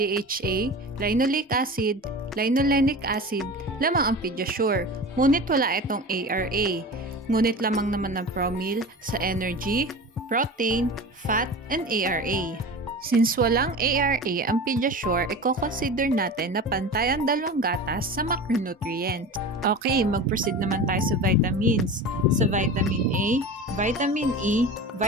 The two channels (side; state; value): both; normal; correlation 0.33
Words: linoleic acid, linolenic acid, lamang ang Pediasure. Ngunit wala itong ARA. Ngunit lamang naman ng Promil sa energy, protein, fat, and ARA. Since walang ARA ang Pediasure, i-consider natin na pantay ang 2 gatas sa macronutrient. Okay, mag-proceed naman tayo sa vitamins. Sa vitamin A, vitamin E,